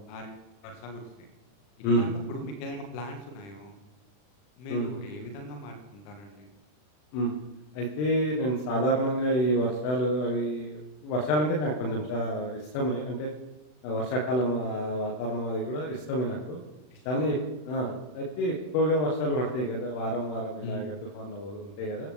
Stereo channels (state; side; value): late; right; 40 ms